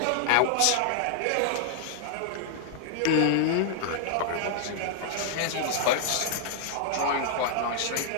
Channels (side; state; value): both; different; correlation -0.01